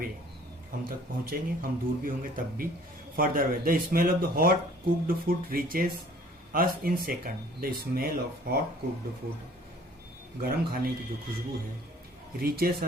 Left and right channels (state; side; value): normal; both; correlation 0.54